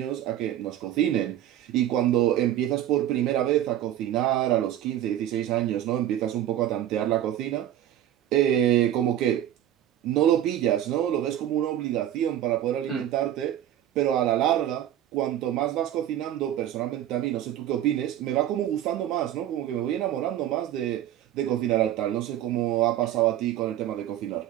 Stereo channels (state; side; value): quieter; left; 11.8 dB